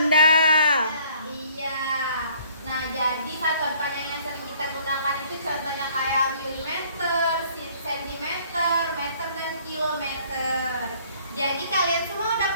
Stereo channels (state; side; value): inverted; both; correlation -0.58